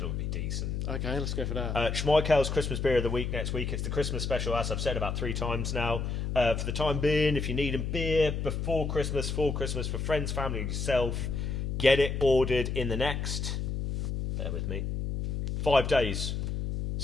would be decent. Okay, let's go for that. Schmeikale's Christmas Beer of the Week next week. It's the Christmas special, as I've said about 3 times now. For the time being, if you need a beer before Christmas, for Christmas, for friends, family, yourself, get it ordered in the next, bear with me, 5 days.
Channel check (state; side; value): noise; left; hum, 2 dB below the sound